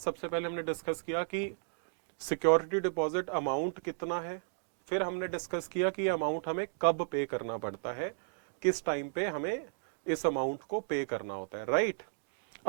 पहले हमने डिस्कस किया कि सिक्योरिटी डिपॉजिट अमाउंट कितना है, फिर हमने डिस्कस किया कि अमाउंट हमें कब पे करना पड़ता है, किस टाइम पे हमें इस अमाउंट को पे करना होता है। राइट,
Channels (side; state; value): left; silent; digital silence